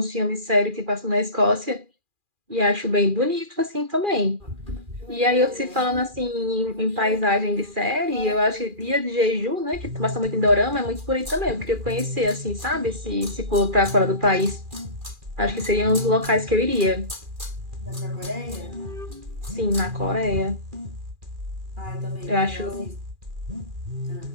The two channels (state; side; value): late; left; 2.4 ms